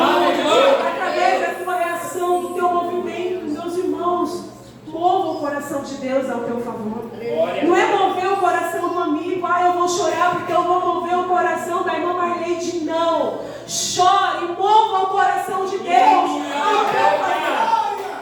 da tua reação, do teu movimento, meus irmãos, mova o coração de Deus ao teu favor. Não é mover o coração do amigo, eu vou chorar porque eu vou mover o coração da irmã Marleide. Não, chore e mova o coração de Deus ao teu favor.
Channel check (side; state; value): both; identical; correlation 1.00